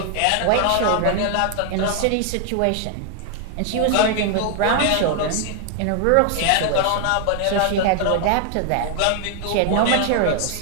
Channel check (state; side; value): different; both; correlation 0.00